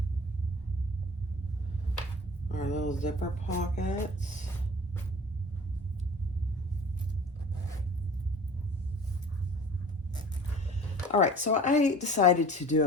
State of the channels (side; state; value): both; normal; correlation 0.44